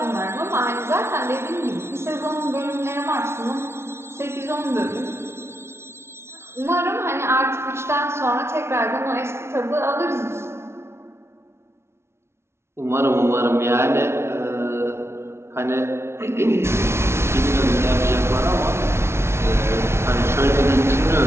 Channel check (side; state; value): left; late; 0.12 ms